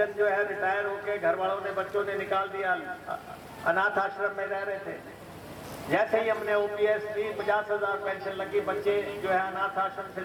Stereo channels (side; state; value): both; identical; correlation 1.00